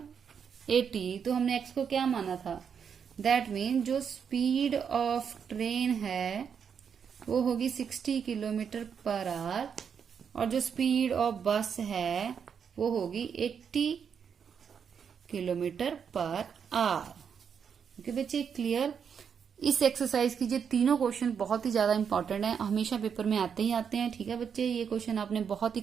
80। तो हमने x को क्या माना था, दैट मीन जो स्पीड ऑफ ट्रेन है वो होगी 60 किलोमीटर पर आवर, और जो स्पीड ऑफ बस है वो होगी 80 किलोमीटर पर आवर। ओके बच्चे, क्लियर। इस एक्सरसाइज की ये तीनों क्वेश्चन बहुत ही ज्यादा इंपॉर्टेंट है, हमेशा पेपर में आते ही आते हैं। ठीक है बच्चे, ये क्वेश्चन आपने बहुत ही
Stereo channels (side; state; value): left; quieter; 7.1 dB